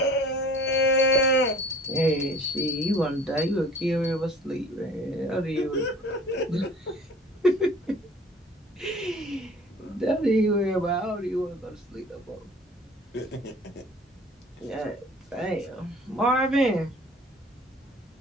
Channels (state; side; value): normal; both; correlation 0.48